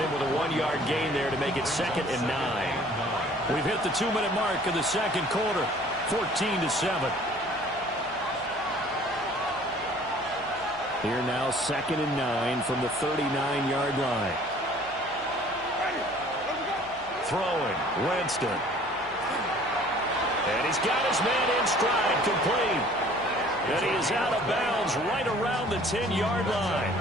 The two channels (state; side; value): noise; right; hum, 23 dB below the sound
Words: with a 1-yard gain there to make it 2nd and 9. We've hit the 2-minute mark of the 2nd quarter. 14-7. Here now 2nd and 9 from the 39-yard line. Throwing, Winston. And he's got his man in stride, complete. And he is out of bounds right around the 10-yard line.